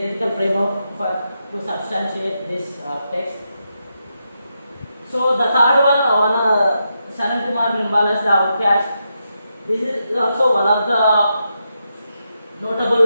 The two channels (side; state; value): both; inverted; correlation -0.84